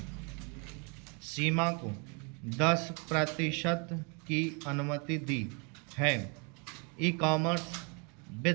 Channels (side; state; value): left; quieter; 34.3 dB